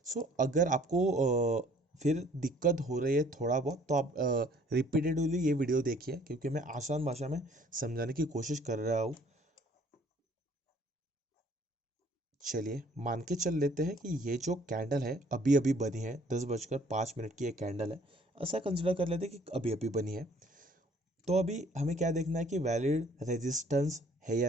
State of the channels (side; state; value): both; normal; correlation 0.58